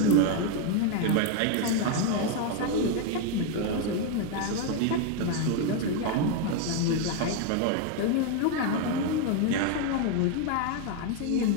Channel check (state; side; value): different; both; correlation 0.01